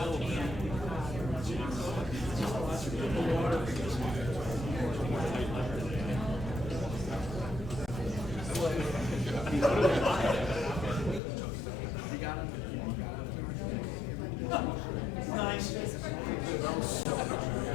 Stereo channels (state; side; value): drops out; right; at 11.2 s